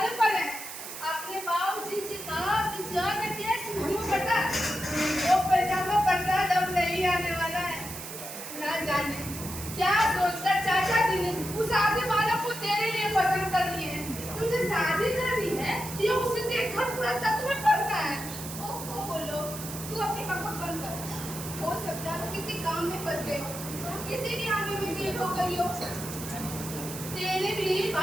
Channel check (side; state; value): right; noise; hiss, 10 dB below the sound